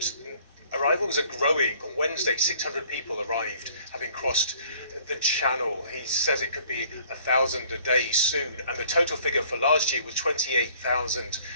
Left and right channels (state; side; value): inverted; both; correlation -0.56